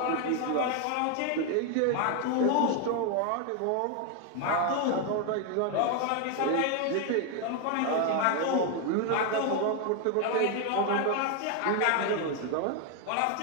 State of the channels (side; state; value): both; different; correlation 0.01